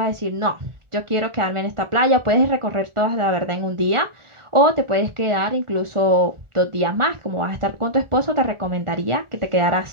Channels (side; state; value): left; late; 1.4 ms